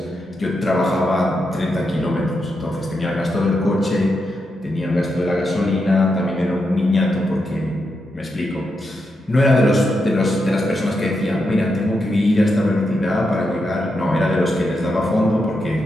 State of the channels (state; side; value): normal; both; correlation 0.85